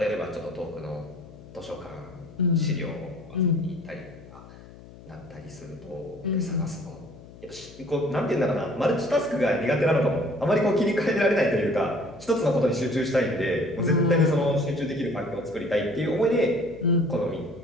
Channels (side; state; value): left; noise; hum, 19 dB below the sound